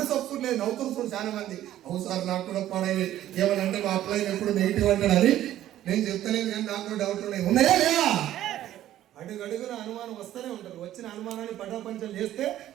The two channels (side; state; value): left; quieter; 12.9 dB